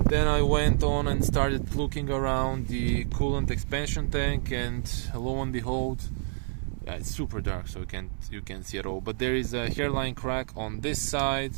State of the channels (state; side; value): silent; left; digital silence